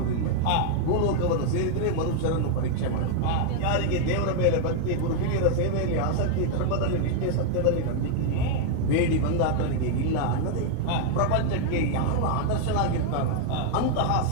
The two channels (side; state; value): both; different; correlation 0.00